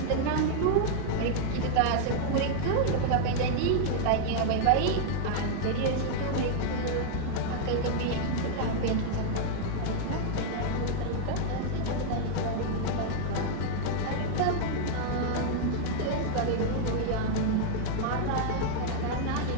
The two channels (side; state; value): both; different; correlation -0.01